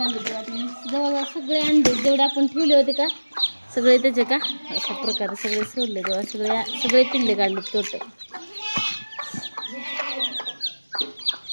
तेव्हा जवळजवळ सगळे अंडे जेवढे आपण ठेवले होते का सगळे त्याचे का अशा प्रकारे सगळे सोडले तेव्हा सगळे पिल्ले काढले टोटल.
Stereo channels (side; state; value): both; inverted; correlation -1.00